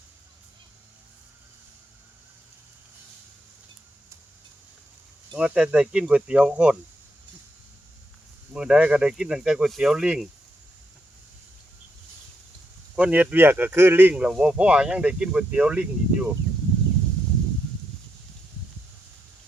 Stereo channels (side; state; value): both; normal; correlation 0.80